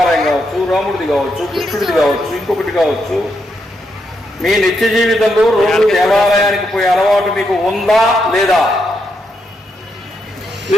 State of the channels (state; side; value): normal; both; correlation 0.81